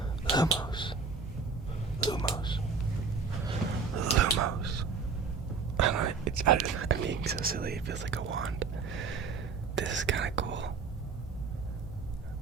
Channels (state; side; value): quieter; left; 5.0 dB